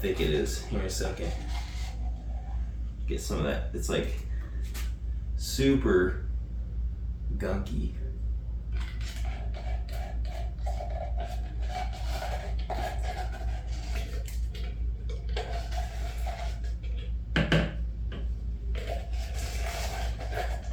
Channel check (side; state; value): both; identical; correlation 1.00